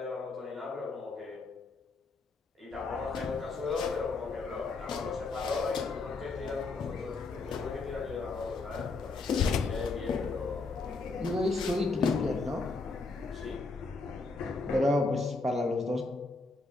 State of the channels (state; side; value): quieter; right; 3.7 dB